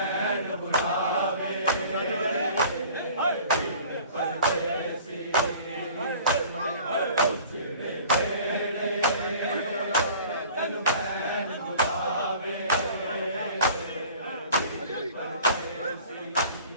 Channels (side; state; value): both; inverted; correlation -0.46